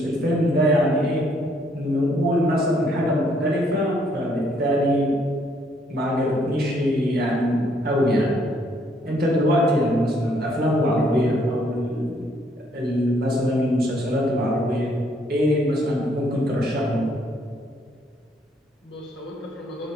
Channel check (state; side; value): normal; both; correlation 0.68